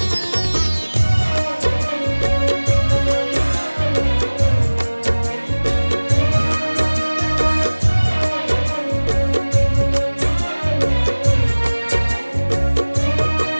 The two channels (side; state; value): both; inverted; correlation -1.00